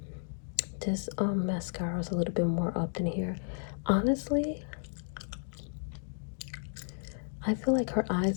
This mascara is a little bit more up than here. Honestly, I feel like her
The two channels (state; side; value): silent; right; digital silence